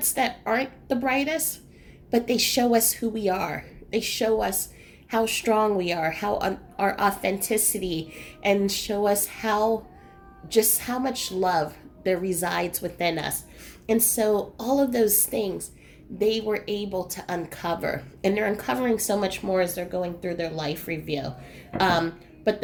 that aren't the brightest, but they show us who we are. They show us how strong we are, our authenticity, and show us how much love there resides within us. And so all of those things they were able to uncover, and they're uncovering so much more as they're going through their life review. Um, but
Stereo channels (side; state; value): both; identical; correlation 1.00